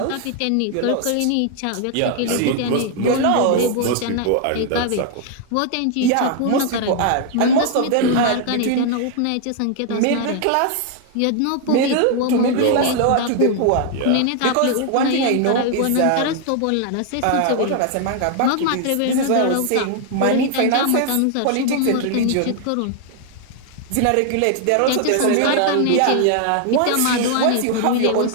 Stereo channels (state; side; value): different; both; correlation 0.00